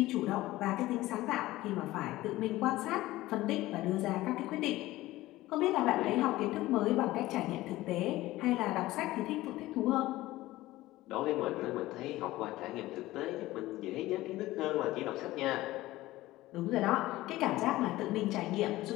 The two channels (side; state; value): right; quieter; 17.2 dB